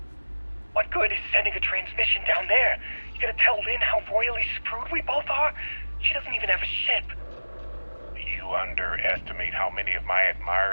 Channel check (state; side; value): inverted; both; correlation -1.00